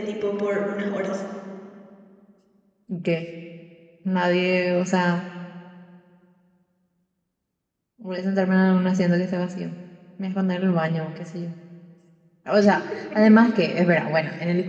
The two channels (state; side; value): identical; both; correlation 1.00